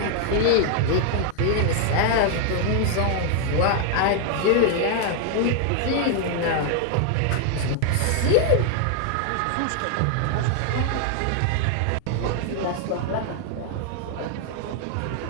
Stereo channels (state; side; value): different; both; correlation 0.00